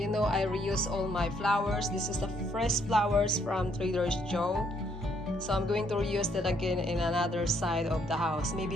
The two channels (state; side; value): normal; both; correlation 0.70